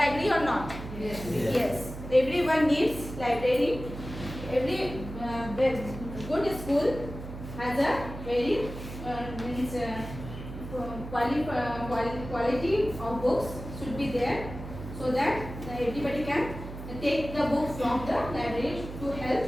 or not? Yes. Yes. Everyone needs library. Every good school has a very means quality of books should be there, so that everybody can take the book from the library to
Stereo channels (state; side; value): noise; right; hum, 10 dB below the sound